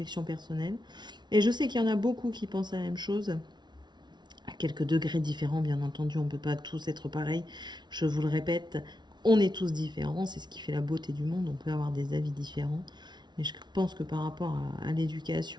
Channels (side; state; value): left; late; 0.21 ms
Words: personnelles. Et je sais qu'il y en a beaucoup qui pensent la même chose. À quelques degrés différents, bien entendu, on ne peut pas tous être pareils. Je vous le répète, on est tous différents. C'est ce qui fait la beauté du monde. On peut avoir des avis différents. Mais je pense que par rapport à